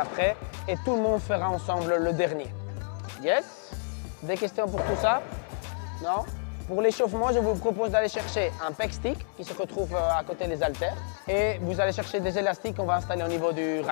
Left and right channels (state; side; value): silent; right; 59 dB below the other